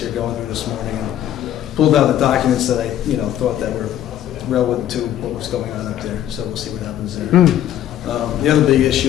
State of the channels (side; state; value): right; quieter; 11.5 dB